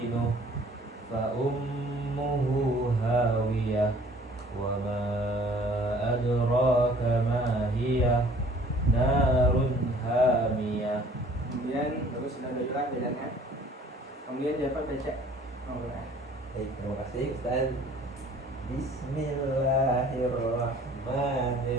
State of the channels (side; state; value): both; normal; correlation 0.53